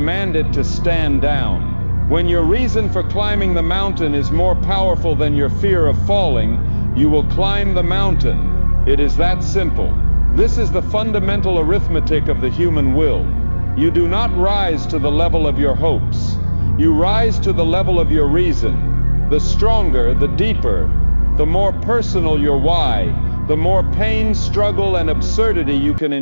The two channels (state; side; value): inverted; both; correlation -1.00